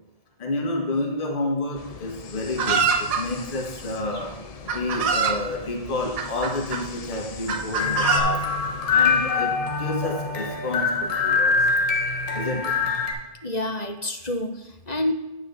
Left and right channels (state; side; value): late; right; 1.7 ms